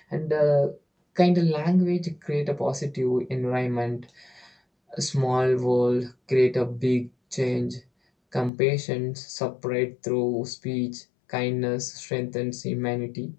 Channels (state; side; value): drops out; right; at 8.5 s